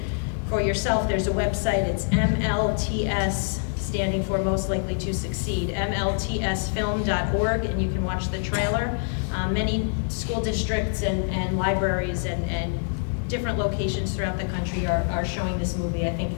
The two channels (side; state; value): right; silent; 58 dB below the other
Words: for yourself. There's a website. It's MLTS, standing for Most Likely to Succeed, mltsfilm.org, and you can watch the trailer. Many school districts and libraries and different locations throughout the country are showing this movie. I think